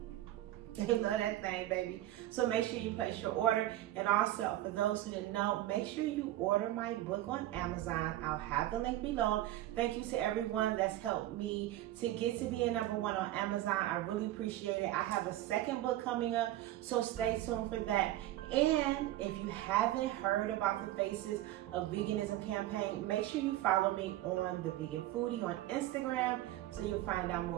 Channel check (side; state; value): left; quieter; 14.7 dB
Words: They love that thing, baby. So make sure you place your order. And also, for those who didn't know, make sure you order my book on Amazon. I'll have the link below. Thank you to everyone that's helped me to get to being #1 on Amazon. I really appreciate it. I have a second book coming up, so stay tuned for that. And if you haven't heard about the Faces of Veganism campaign, make sure you follow me on the Vegan Foodie on Instagram so you'll find out